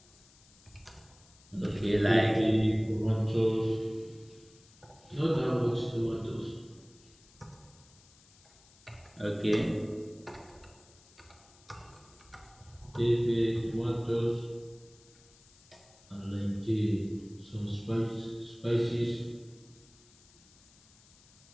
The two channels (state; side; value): noise; left; hiss, 27 dB below the sound